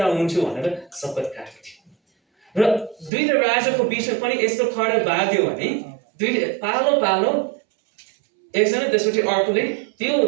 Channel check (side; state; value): left; drops out; at 3.1 s